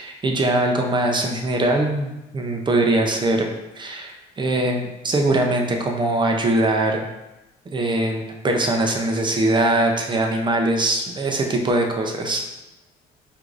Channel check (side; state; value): both; normal; correlation 0.49